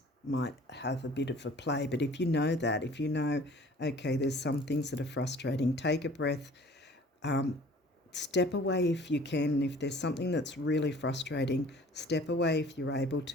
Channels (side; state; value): both; normal; correlation 0.50